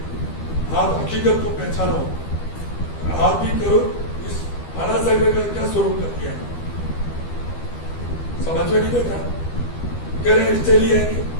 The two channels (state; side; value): late; right; 12 ms